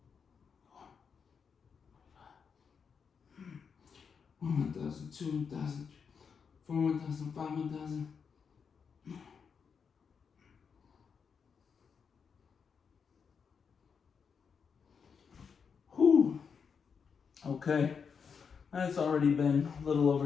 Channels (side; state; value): right; quieter; 6.2 dB